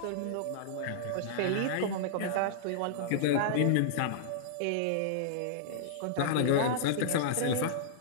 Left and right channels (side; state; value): both; different; correlation -0.02